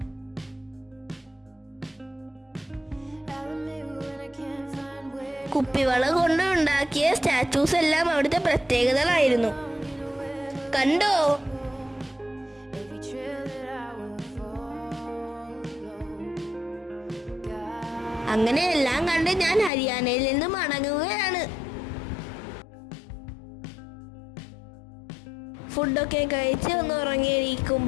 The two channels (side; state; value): right; drops out; at 19.7 s